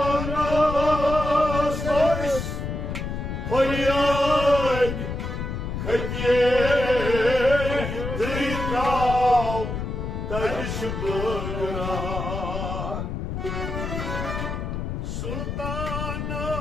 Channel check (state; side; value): noise; left; rumble, 4 dB below the sound